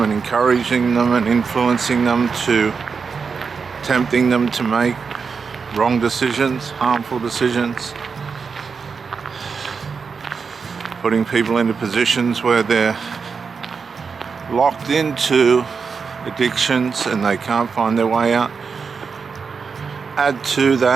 and encouraging them and influencing them to, tempting them to make wrong decisions, harmful decisions, putting people into positions where they're locked into addictions and they can't find their way out. Add to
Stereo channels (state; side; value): quieter; left; 5.4 dB